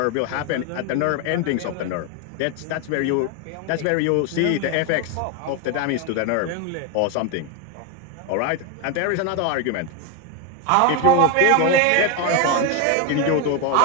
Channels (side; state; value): both; different; correlation 0.01